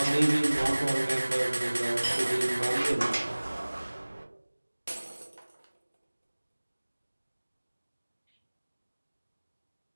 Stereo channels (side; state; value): both; inverted; correlation -1.00